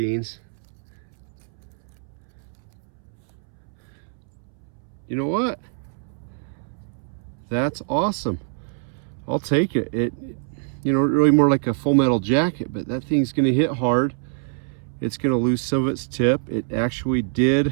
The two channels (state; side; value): silent; left; 62 dB below the other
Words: You know what? That's awesome. I'll take it. It, you know, really more like a full metal jacket, but that thing's gonna hit hard. It's gonna lose some of its tip. It actually